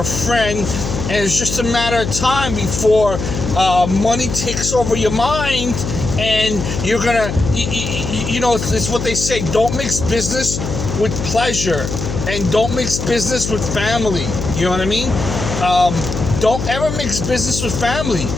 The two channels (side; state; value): left; noise; hum, 5 dB below the sound